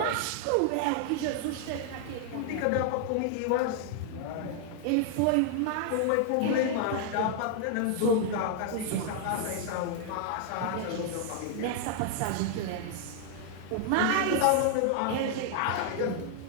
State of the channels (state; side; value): different; both; correlation 0.00